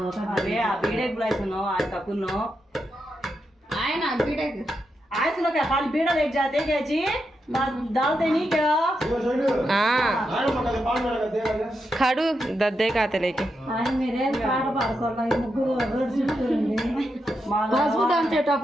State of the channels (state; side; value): normal; both; correlation 0.85